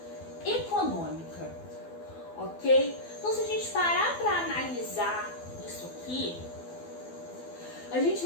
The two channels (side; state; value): right; late; 12 ms